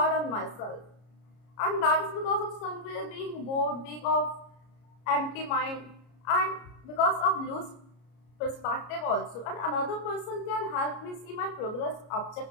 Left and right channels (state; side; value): late; right; 33 ms